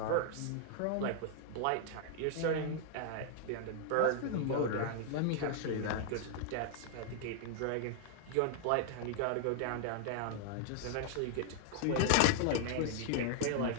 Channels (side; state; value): both; different; correlation 0.00